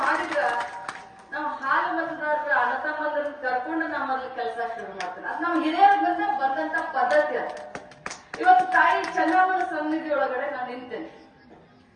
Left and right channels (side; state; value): both; identical; correlation 1.00